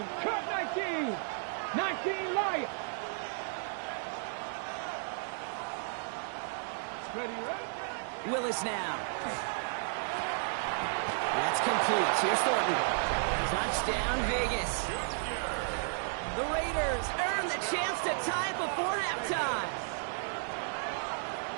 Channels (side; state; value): left; silent; 56 dB below the other